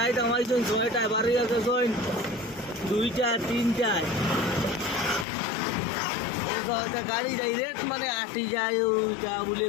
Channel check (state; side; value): drops out; right; at 5.2 s